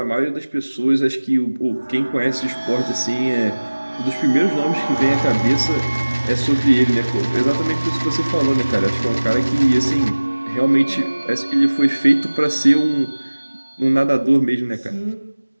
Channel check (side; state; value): both; inverted; correlation -1.00